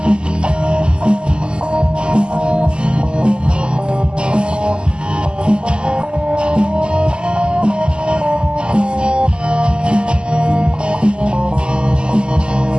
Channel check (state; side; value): late; left; 0.050 ms